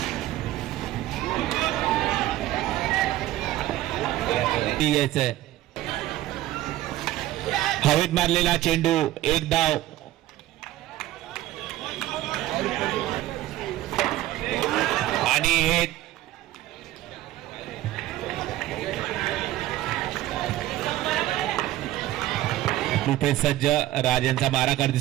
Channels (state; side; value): quieter; left; 15.0 dB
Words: घ्यायचंय. हवेत मारलेला चेंडू, एक धाव. आणि हे रुपेश सज्ज राजांचा मारा करते